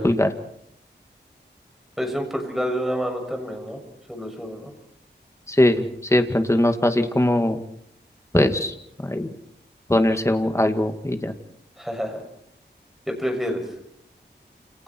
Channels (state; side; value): normal; both; correlation 0.87